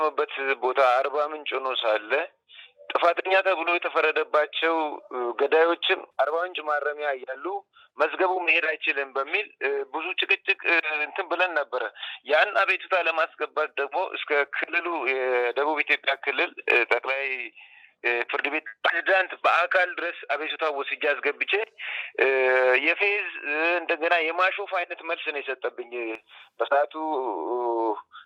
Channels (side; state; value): both; identical; correlation 1.00